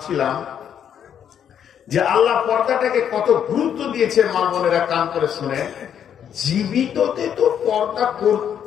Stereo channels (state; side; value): quieter; right; 8.9 dB